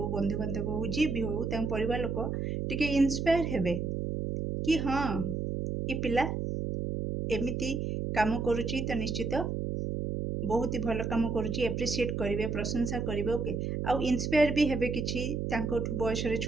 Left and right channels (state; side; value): noise; right; hum, 2 dB below the sound